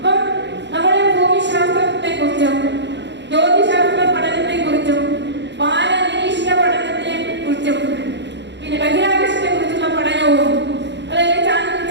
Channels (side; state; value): left; late; 0.52 ms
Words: നമ്മുടെ ഭൂമിശാസ്ത്രത്തെ കുറിച്ചും ജ്യോതിശാസ്ത്ര പഠനത്തെ കുറിച്ചും വാനനിരീക്ഷണ പഠനത്തെ കുറിച്ചും പിന്നെ ബഹിരാകാശത്തെ കുറിച്ചുള്ള പഠനവും അതായത്